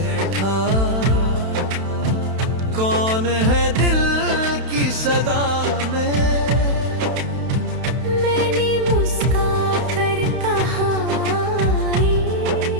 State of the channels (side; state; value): left; late; 31 ms